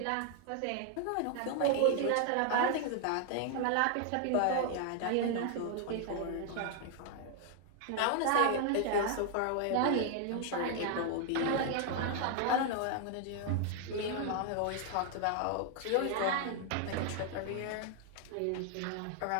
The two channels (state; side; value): different; both; correlation 0.00